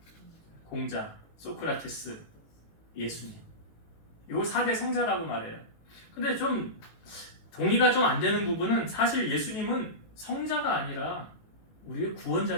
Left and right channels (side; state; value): right; late; 18 ms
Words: 공자, 소크라테스, 예수님. 요 4대 성자라고 말해요. 근데 좀 동의가 좀 안 되는 부분은 사실 예수님은 성자가 아니라 우리의